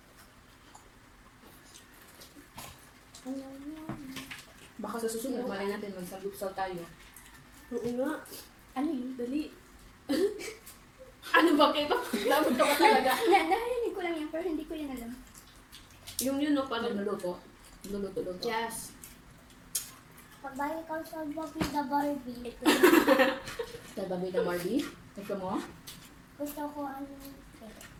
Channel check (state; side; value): identical; both; correlation 1.00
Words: Baka sa susunod, malay natin magsagupsal tayo. Oo nga. Ano yun? Dali. Ano ba kayo? Dapat ka ba talaga? Narinig ko lang yan, pero hindi ko yan alam. Yung yun, no? Parang... Luluto. Luluto. Yes. Pagbalik ko sa Bobby the Barbie, ito. Sa babi na Barbie. Gusto mo? Gusto ko ano.